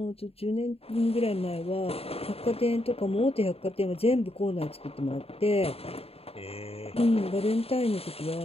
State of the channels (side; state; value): right; late; 0.28 ms